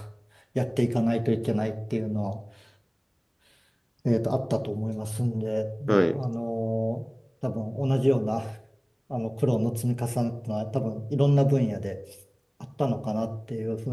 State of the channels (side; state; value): both; identical; correlation 1.00